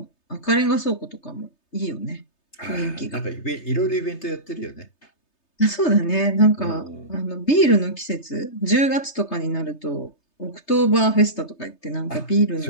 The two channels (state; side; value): late; right; 3.3 ms